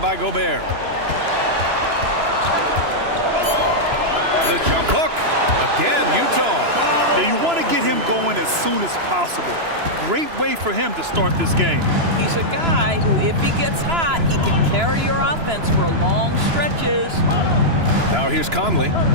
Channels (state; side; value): late; left; 2.9 ms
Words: Gobert. The jump hook. Again, Utah. Now, you want to get him going as soon as possible. Great way for him to start this game. He's a guy who, if he gets hot, he can carry your offense for long stretches. Now here's Conley.